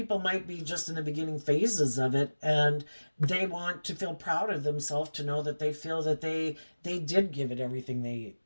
might be just in the beginning phases of it, and they want to feel proud of themselves to know that they feel that they did give it everything they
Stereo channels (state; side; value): inverted; both; correlation -1.00